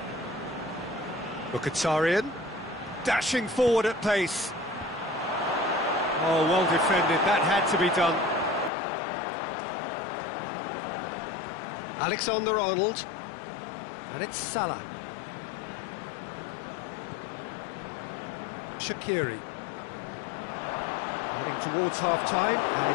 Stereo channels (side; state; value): right; drops out; at 8.7 s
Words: Mkhitaryan. Dashing forward at pace. Oh, well defended. That had to be done. Alexander-Arnold. And it's Salah. Shaqiri. Heading towards half-time, and